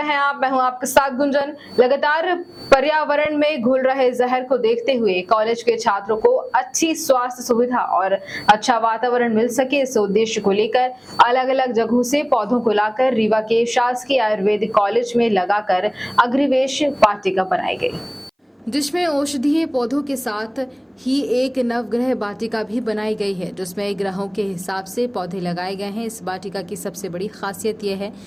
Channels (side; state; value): both; identical; correlation 1.00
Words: हैं आप। मैं हूं आपके साथ गुंजन। लगातार पर्यावरण में घुल रहे जहर को देखते हुए कॉलेज के छात्रों को अच्छी स्वास्थ्य सुविधा और अच्छा वातावरण मिल सके, इस उद्देश्य को लेकर अलग अलग जगहों से पौधों को लाकर रीवा के शासकीय आयुर्वेदिक कॉलेज में लगाकर अग्निवेश वाटिका बनाई गई, जिसमें औषधीय पौधों के साथ ही एक नवग्रह वाटिका भी बनाई गई है, जिसमें ग्रहों के हिसाब से पौधे लगाए गए हैं। इस वाटिका की सबसे बड़ी खासियत यह है